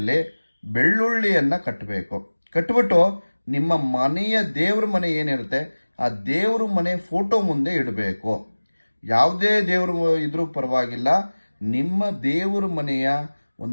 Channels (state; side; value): inverted; both; correlation -1.00